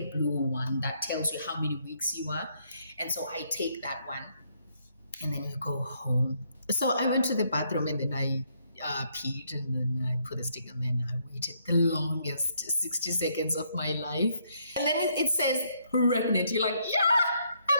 blue one that tells you how many weeks you are. And so I take that one and then you go home. So I went to the bathroom and then I peed and then I put a stick and then I waited the longest 60 seconds of my life. And then it says pregnant. You're like, yeah, am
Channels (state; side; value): inverted; both; correlation -0.72